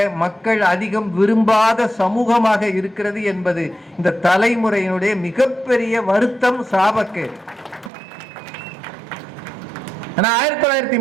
மக்கள் அதிகம் விரும்பாத சமூகமாக இருக்கிறது என்பது இந்த தலைமுறையினுடைய மிகப்பெரிய வருத்தம், சாபக்கேடு.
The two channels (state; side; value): drops out; left; at 7.9 s